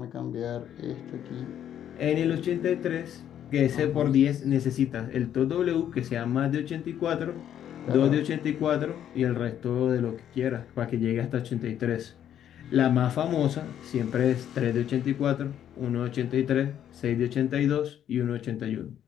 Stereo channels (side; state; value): right; quieter; 10.2 dB